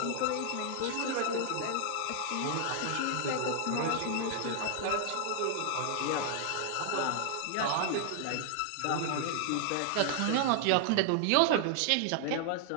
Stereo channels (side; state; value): both; different; correlation 0.00